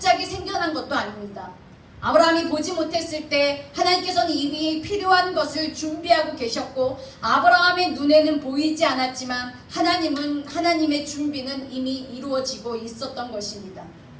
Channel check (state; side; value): identical; both; correlation 1.00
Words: 생겨난 것도 아닙니다. 아브라함이 보지 못했을 때 하나님께서는 이미 필요한 것을 준비하고 계셨고 아브라함의 눈에는 보이지 않았지만 하나님의 준비는 이미 이루어지고 있었던 것입니다.